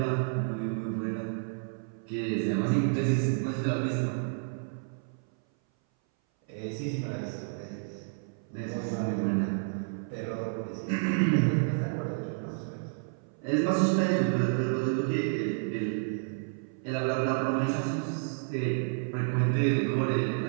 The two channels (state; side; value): silent; left; 58 dB below the other